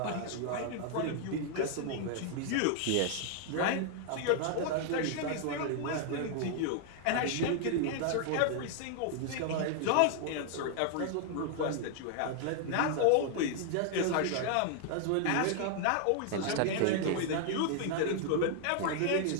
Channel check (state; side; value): different; both; correlation 0.00